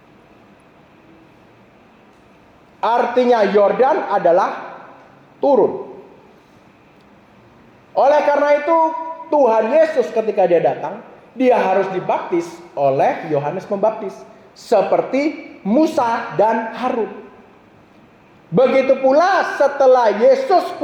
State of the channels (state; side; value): identical; both; correlation 1.00